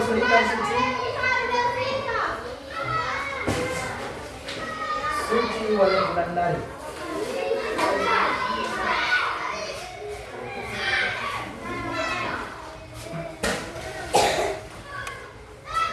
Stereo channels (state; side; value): identical; both; correlation 1.00